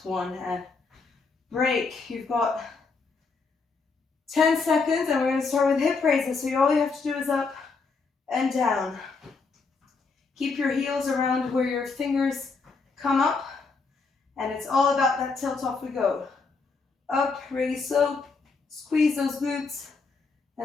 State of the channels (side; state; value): right; quieter; 4.4 dB